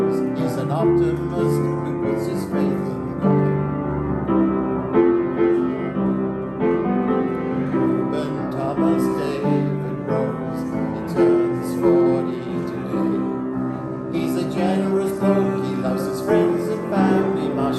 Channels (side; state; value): both; identical; correlation 1.00